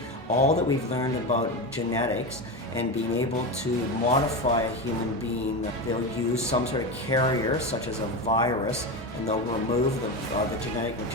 all that we've learned about genetics and being able to modify a human being. They'll use some sort of carrier, such as a virus, and they'll remove the genetic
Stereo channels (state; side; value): normal; both; correlation 0.19